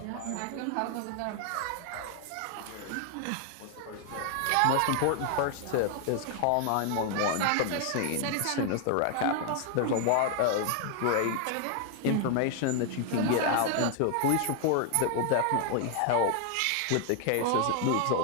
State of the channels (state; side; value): different; both; correlation 0.00